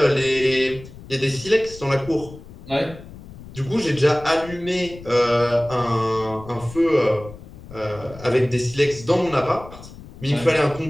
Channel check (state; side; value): noise; left; rumble, 16 dB below the sound